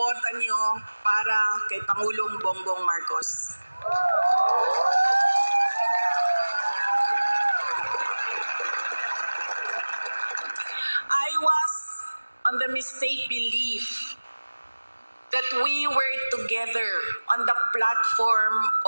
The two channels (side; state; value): both; inverted; correlation -1.00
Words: niyo para kay Pangulong Bongbong Marcos. I was on the mistaken belief that we were together on the platform